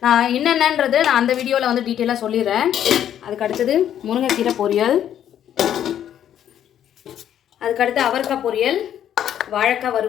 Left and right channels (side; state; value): right; quieter; 10.3 dB